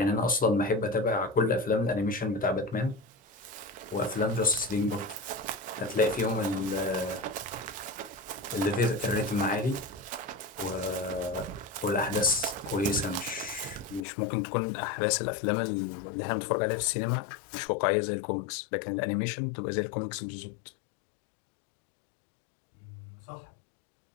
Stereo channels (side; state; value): right; drops out; at 14.1 s